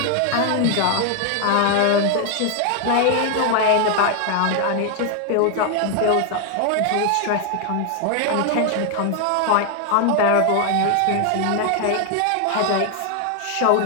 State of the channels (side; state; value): both; different; correlation 0.00